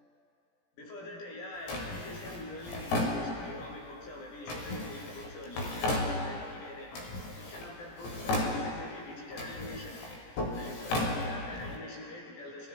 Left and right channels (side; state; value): right; late; 17 ms